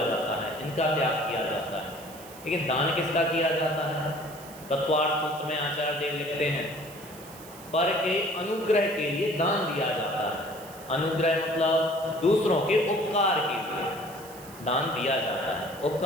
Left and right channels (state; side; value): noise; right; hiss, 18 dB below the sound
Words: जाता है, इनका त्याग किया जाता है। लेकिन दान किसका किया जाता है? तत्वार्थ सूत्र में आचार्य देव लिखते हैं, पर के अनुग्रह के लिए दान दिया जाता है। अनुग्रह मतलब दूसरों के उपकार के लिए दान दिया जाता है।